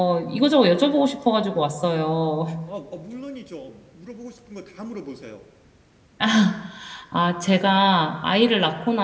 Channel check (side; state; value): both; identical; correlation 1.00